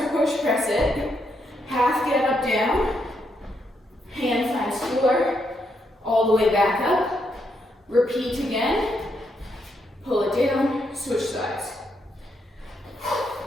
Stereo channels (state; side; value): normal; both; correlation 0.78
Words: push press it. Half get up, down. Hand finds floor. All the way back up. Repeat again. Pull it down. Switch sides.